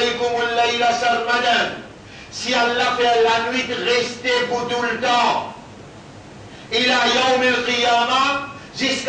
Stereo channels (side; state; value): both; identical; correlation 1.00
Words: al-layla sarmadan. Si Allah fait la nuit rester pour tout le temps, il a yawm al-qiyamah,